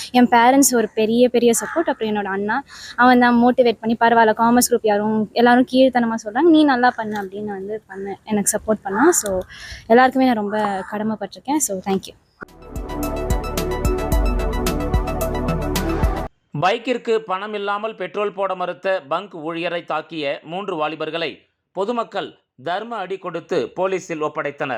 என் பேரண்ட்ஸ் ஒரு பெரிய சப்போர்ட். அப்புறம் என்னோட அண்ணா, அவன் தான் மோட்டிவேட் பண்ணி, பரவாயில்ல காமர்ஸ் குரூப் எல்லாரும் கீழ்த்தனமாக சொல்கிறாங்க, நீ நல்லா பண்ணு அப்படின்னு வந்து எனக்கு சப்போர்ட் பண்ணான். ஸோ எல்லாருக்குமே நான் ரொம்ப கடமைப்பட்டிருக்கேன். So thank you. பைக்கிற்கு பணம் இல்லாமல் பெட்ரோல் போட மறுத்த பங்க் ஊழியரை தாக்கிய 3 வாலிபர்களை பொதுமக்கள் தர்ம அடி கொடுத்து போலீசில்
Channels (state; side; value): identical; both; correlation 1.00